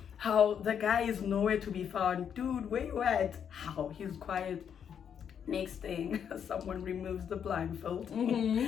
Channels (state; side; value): quieter; right; 8.1 dB